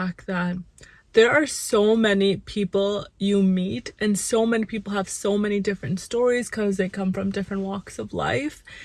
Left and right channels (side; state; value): both; identical; correlation 1.00